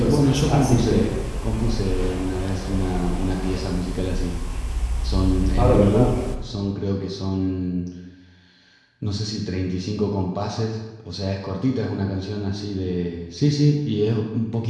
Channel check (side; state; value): both; identical; correlation 1.00